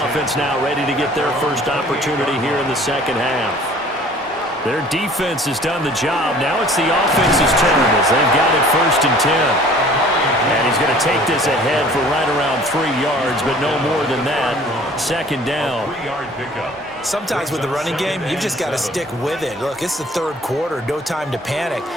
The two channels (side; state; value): both; normal; correlation 0.51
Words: now ready to get their first opportunity here in the second half. Their defense has done the job. Now it's the offense's turn as they've got it 1st and 10. And he's going to take this ahead for right around 3 yards, but no more than that. 2nd down. Sometimes with the running game, you've just got to stick with it. Look, it's the 3rd quarter, no time to panic.